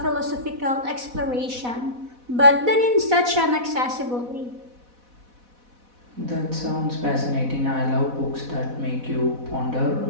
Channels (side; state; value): left; late; 4.1 ms